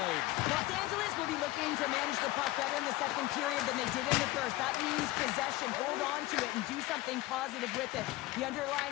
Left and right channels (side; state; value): right; quieter; 17.8 dB